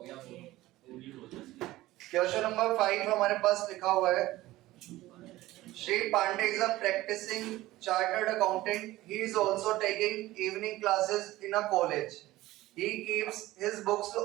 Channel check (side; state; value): left; quieter; 17.1 dB